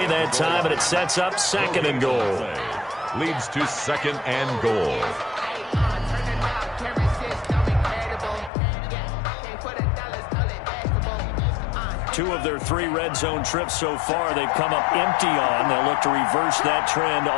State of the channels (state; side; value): drops out; right; at 8.5 s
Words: that time, and it sets up 2nd and goal. Leads to 2nd and goal. Two of their 3 red zone trips so far, they've come up empty on. They'll look to reverse that trend